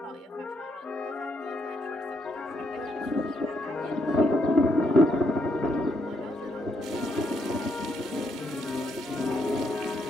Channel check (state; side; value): normal; both; correlation 0.76